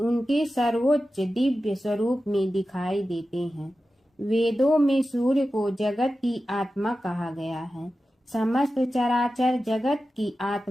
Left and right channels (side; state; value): both; normal; correlation 0.93